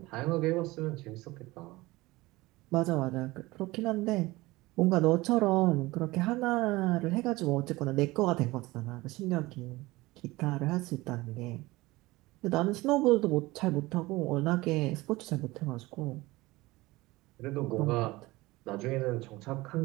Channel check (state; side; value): quieter; left; 20.4 dB